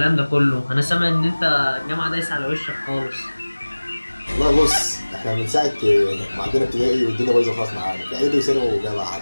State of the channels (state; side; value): inverted; both; correlation -1.00